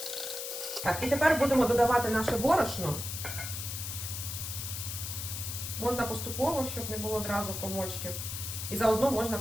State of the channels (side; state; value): left; noise; hiss, 6 dB below the sound